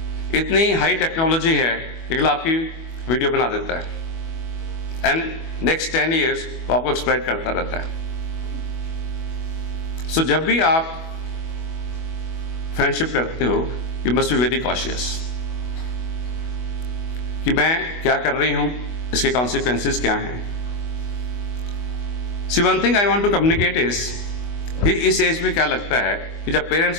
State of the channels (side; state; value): right; late; 24 ms